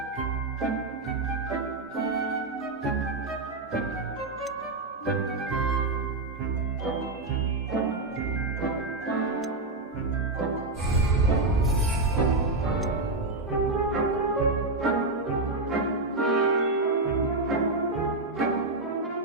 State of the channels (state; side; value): quieter; left; 3.1 dB